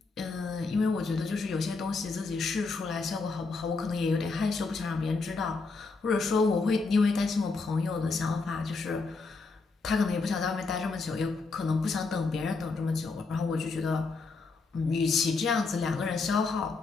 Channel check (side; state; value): right; quieter; 4.1 dB